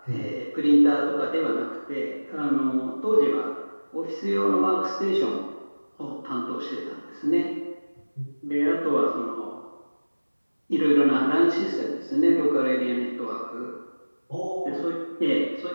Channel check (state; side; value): inverted; both; correlation -1.00